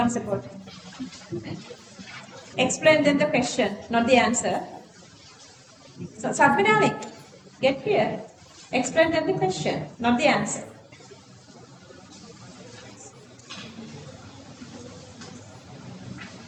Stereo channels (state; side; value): identical; both; correlation 1.00